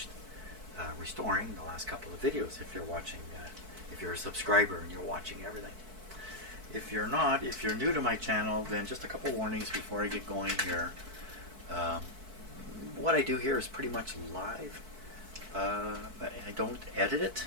restoring the last couple of videos. If you're watching, if you're a subscriber and you're watching everything. If you're not, if you're new to my channel, then just a couple warnings before I get going here. What I do here is pretty much live. I don't edit it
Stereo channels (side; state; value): left; late; 4.6 ms